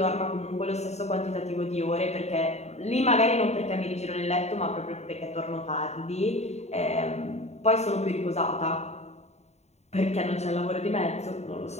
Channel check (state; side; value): late; right; 0.32 ms